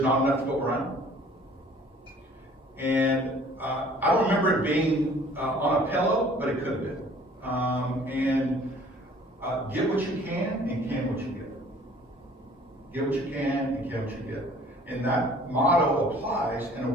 enough to go around. And I don't remember it being on a pillow, but it could have been. Get what you can and can what you get. Get what you can and can what you get. And that motto applies in a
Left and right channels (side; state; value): both; normal; correlation 0.53